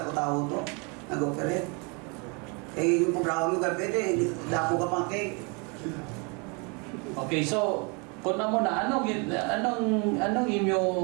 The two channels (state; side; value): quieter; left; 32.5 dB